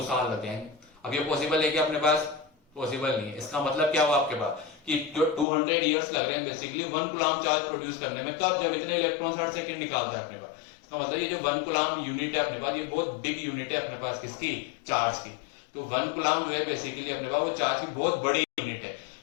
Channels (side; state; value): right; drops out; at 5.5 s